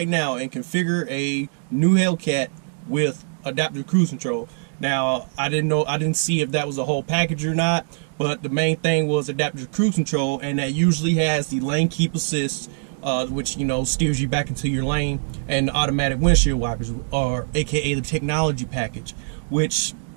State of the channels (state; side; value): silent; left; digital silence